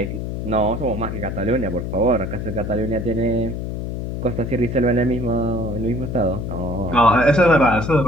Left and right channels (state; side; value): noise; left; hum, 5 dB below the sound